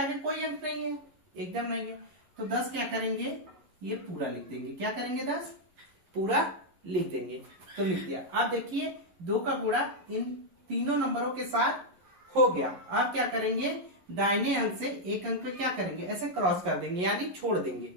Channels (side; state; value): left; late; 11 ms